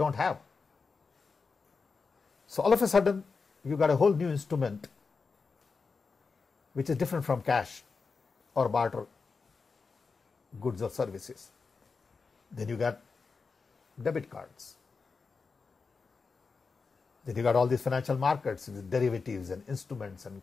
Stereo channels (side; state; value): right; quieter; 4.7 dB